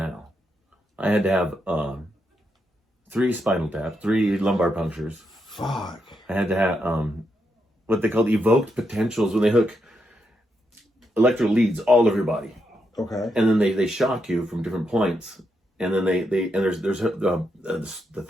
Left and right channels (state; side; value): normal; both; correlation 0.82